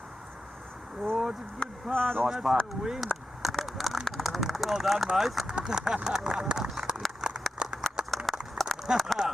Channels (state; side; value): normal; both; correlation 0.89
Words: Oh, it's a good part, Nice and that's putt. the win. Well done, mate.